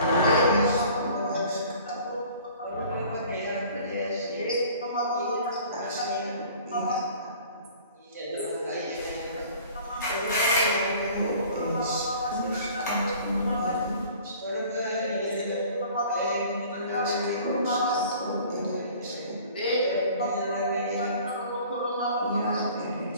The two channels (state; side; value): inverted; both; correlation -0.48